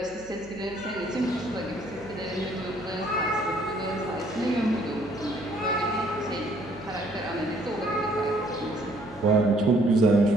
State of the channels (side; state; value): right; noise; hum, 22 dB below the sound